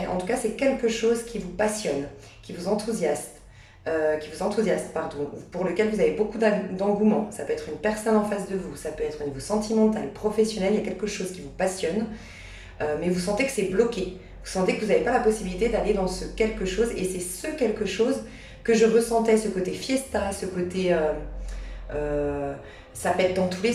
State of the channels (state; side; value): identical; both; correlation 1.00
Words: en tout cas c'est quelque chose qui vous passionne, qui vous enthousiasme, pardon, pour lequel vous avez beaucoup d'engouement. Ça peut être une personne en face de vous, ça peut être au niveau sentimental, professionnel, il y a quelque chose qui vous passionne, mais vous sentez que c'est bloqué. Vous sentez que vous n'avez pas la possibilité d'aller dans ce quelque chose, et c'est ce quelque chose que je ressentais, ce côté fiesta, ce côté... ça pète dans tous les